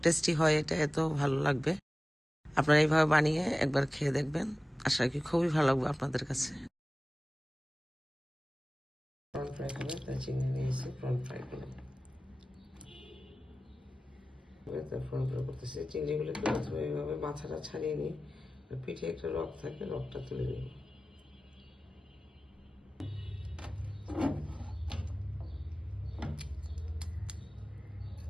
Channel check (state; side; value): normal; both; correlation 0.96